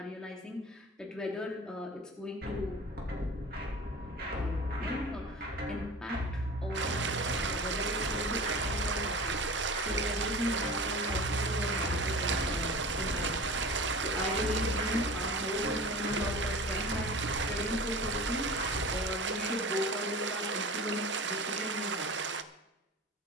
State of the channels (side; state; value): both; normal; correlation 0.36